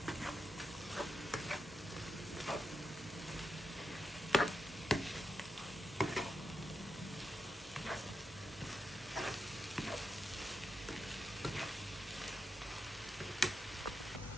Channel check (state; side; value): normal; both; correlation 0.86